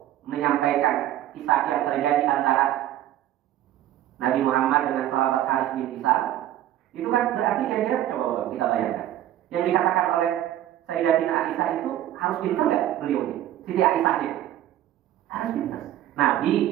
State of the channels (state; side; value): quieter; left; 12.8 dB